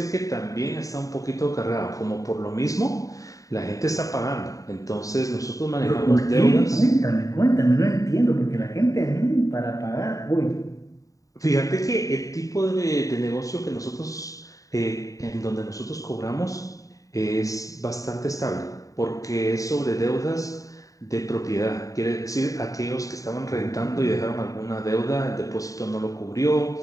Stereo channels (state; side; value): late; right; 0.16 ms